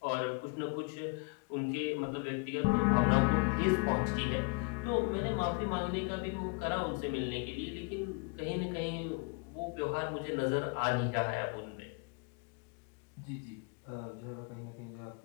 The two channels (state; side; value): quieter; right; 34.4 dB